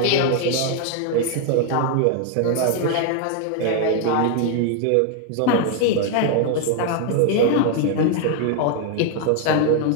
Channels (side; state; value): both; different; correlation 0.00